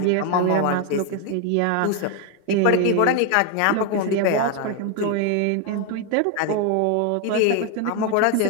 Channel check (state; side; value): different; both; correlation 0.01